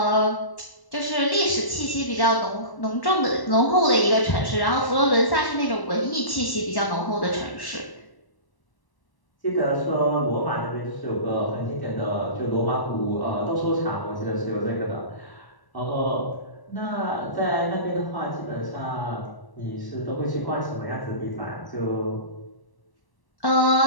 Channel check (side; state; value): right; late; 1.0 ms